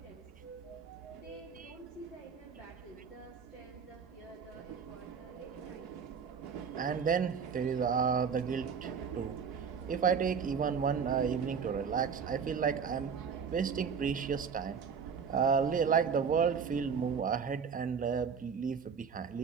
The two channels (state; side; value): quieter; left; 6.4 dB